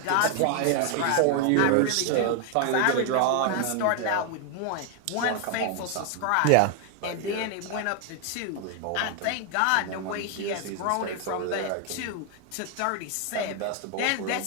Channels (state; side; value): different; both; correlation 0.00